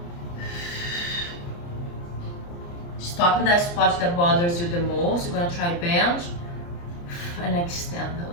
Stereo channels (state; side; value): late; right; 29 ms